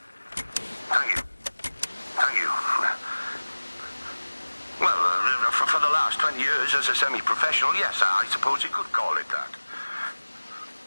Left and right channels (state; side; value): inverted; both; correlation -1.00